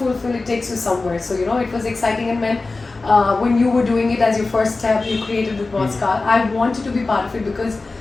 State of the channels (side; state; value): right; quieter; 3.6 dB